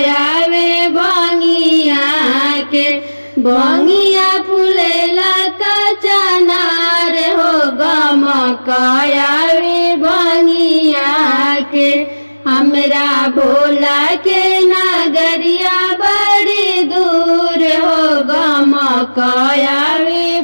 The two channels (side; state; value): both; inverted; correlation -1.00